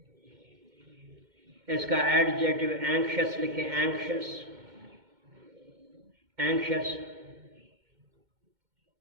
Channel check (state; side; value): late; left; 2.2 ms